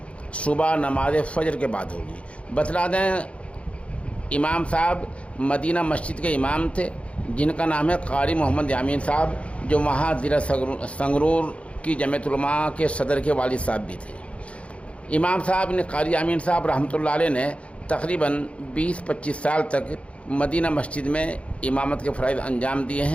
صبح نماز فجر کے بعد ہوگی۔ بتلا دیں، امام صاحب مدینہ مسجد کے امام تھے، جن کا نام ہے قاری محمد یامین صاحب، جو وہاں ضلع سنگرور کی جمعیت علماء کے صدر کے والد صاحب بھی تھے۔ امام صاحب نے، قاری یامین صاحب رحمۃ اللہ علیہ نے تقریباً 20-25 سال تک مدینہ مسجد میں امامت کے فرائض انجام دیے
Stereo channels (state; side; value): late; right; 0.062 ms